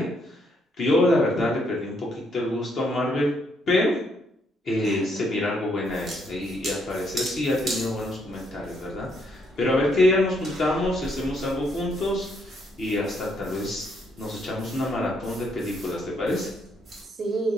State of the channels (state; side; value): normal; both; correlation 0.73